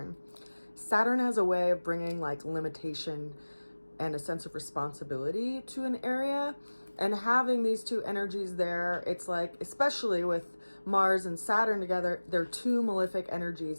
Saturn has a way of bringing like limitation and a sense of responsibility to an area. And having these two energies there, it's like, especially with Mars and Saturn together, they're two malefic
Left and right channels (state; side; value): inverted; both; correlation -1.00